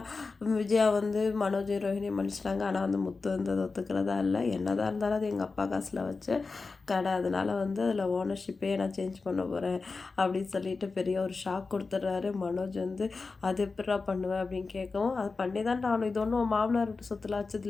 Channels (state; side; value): quieter; right; 4.2 dB